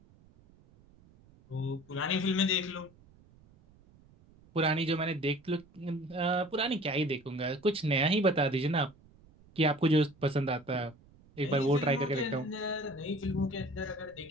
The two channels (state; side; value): noise; right; rumble, 27 dB below the sound